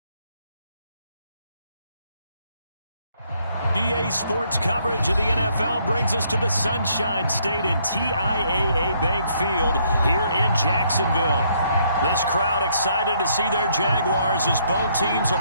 EA Sports coverage of the NFL brings us to the Sunshine State in TIAA Bank Field here in Jacksonville. This crowd excited to see their Jaguars as both teams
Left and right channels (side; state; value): both; inverted; correlation -0.69